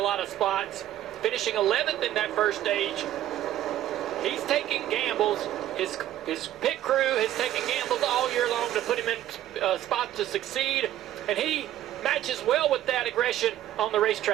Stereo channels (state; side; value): quieter; left; 12.8 dB